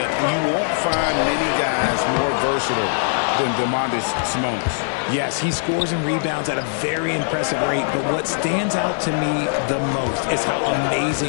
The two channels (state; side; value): silent; right; 61 dB below the other